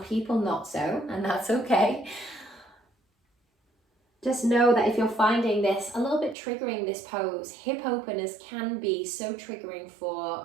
people not so, and that's okay. Just know that if you're finding this a little bit triggering, this pose, hip openers can be so triggering for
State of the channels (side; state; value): left; drops out; at 6.4 s